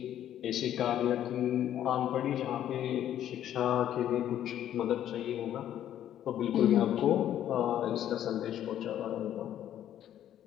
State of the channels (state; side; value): quieter; right; 11.2 dB